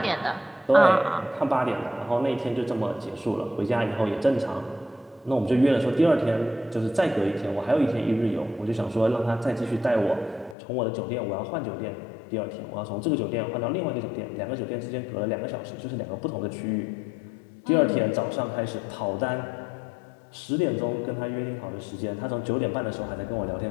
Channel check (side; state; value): right; drops out; at 10.6 s